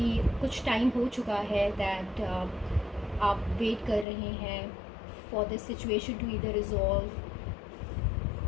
कुछ टाइम हो चुका है दैट आप वेट कर रहे हैं फॉर दिस सिचुएशन टू इधर रिजॉल्व.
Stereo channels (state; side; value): drops out; right; at 4.0 s